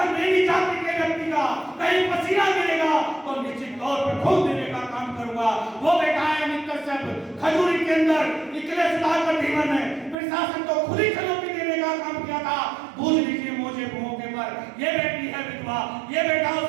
मेरी जाति के व्यक्ति का कहीं पसीना गिरेगा तो निश्चित तौर पर खून देने का काम करूंगा। वो बैठा है अमित कश्यप खजूरी के अंदर इसलिए सुधाकर धीमन ने प्रशासन को खुली चुनौती देने का काम किया था। भूल लीजिए मौके पर ये बेटी है विधवा, ये बेटा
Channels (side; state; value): left; drops out; at 10.2 s